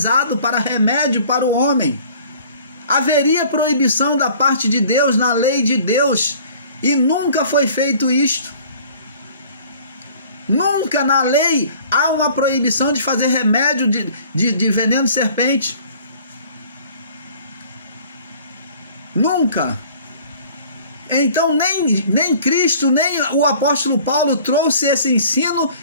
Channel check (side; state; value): both; inverted; correlation -0.50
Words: para remédio para o homem. Haveria proibição da parte de Deus, na lei de Deus, e nunca foi feito isto. Nunca na lei há uma proibição de fazer remédio de veneno de serpente. Nunca. Então nem Cristo, nem o apóstolo Paulo trouxe esse ensino